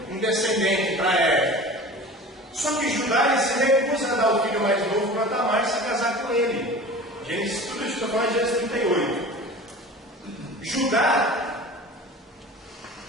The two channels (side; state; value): both; normal; correlation 0.38